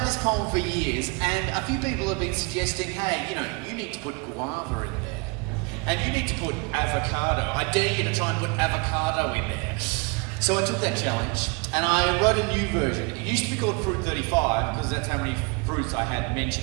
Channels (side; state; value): left; quieter; 30.4 dB